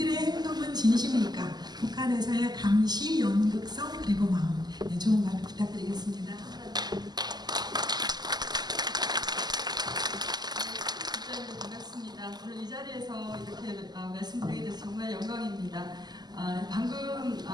행동은 진심일까? 북한에서의 감시, 연극성, 그리고 마음. 네, 좋은 발표 부탁드리겠습니다. 반갑습니다. 오늘 이 자리에서 이렇게 말씀드리게 돼서 정말 영광입니다. 방금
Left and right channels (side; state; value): left; late; 0.20 ms